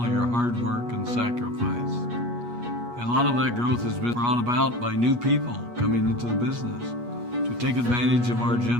of your hard work and sacrifice. A lot of that growth has been brought about by new people coming into the business to take advantage of our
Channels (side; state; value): left; late; 8.3 ms